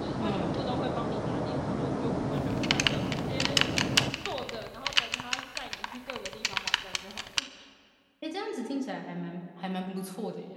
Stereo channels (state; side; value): identical; both; correlation 1.00